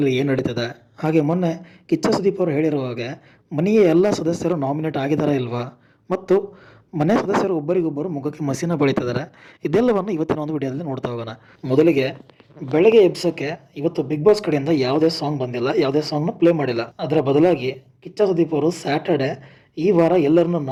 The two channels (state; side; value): identical; both; correlation 1.00